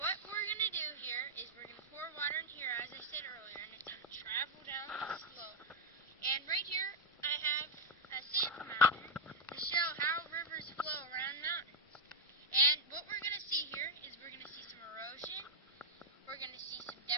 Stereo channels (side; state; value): both; normal; correlation 0.00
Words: we're going to do here is we're going to pour water in here, as I said earlier, and it's going to travel down the slope. And right here, I have a sand mountain to show how rivers flow around mountains. And what we're going to see here is we're going to see some erosion, we're going to see some